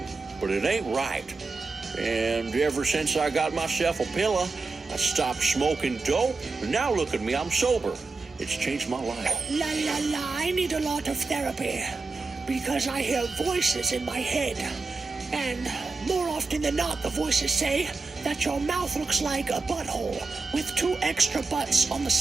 but it ain't right. And ever since I got myself a pillow, I stopped smoking dope, and now look at me, I'm sober. It's changed my life. La la la, I need a lot of therapy because I hear voices in my head. And more often than not, the voices say that your mouth looks like a butthole with 2 extra butts on the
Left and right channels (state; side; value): quieter; left; 3.9 dB